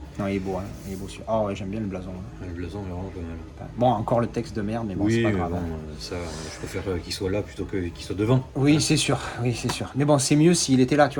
Non, il est beau, hein. Il est beau celui-là. Ah ouais, j'aime bien le blason. Là. Le blason est vraiment pas mal. Bon, encore le texte de merde, mais bon, oui, c'est pas mais grave. bon, hein. ça, je préfère qu'il soit là plutôt qu'il soit devant. Oui, c'est sûr, oui, c'est sûr. Mais bon, c'est mieux s'il était là, tu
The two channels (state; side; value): identical; both; correlation 1.00